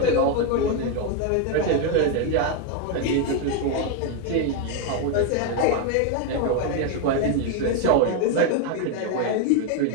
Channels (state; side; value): different; both; correlation 0.01